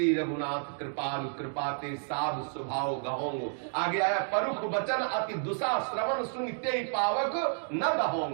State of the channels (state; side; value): silent; left; 57 dB below the other